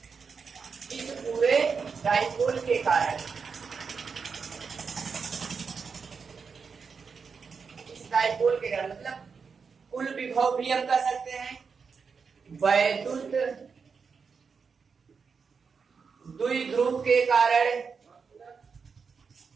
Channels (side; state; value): left; quieter; 5.6 dB